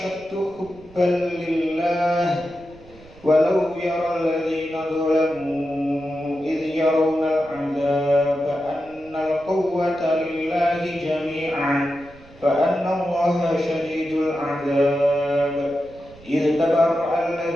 hubban lillah walau yara alladzina zalamu idh yarawna al'adzaba anna al-quwwata lillahi jami'an fa anna allaha shadidul 'adzab. إذ تبرأ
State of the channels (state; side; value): noise; right; rumble, 23 dB below the sound